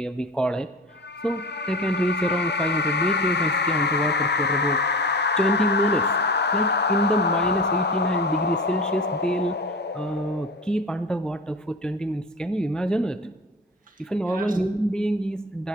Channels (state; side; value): normal; both; correlation 0.34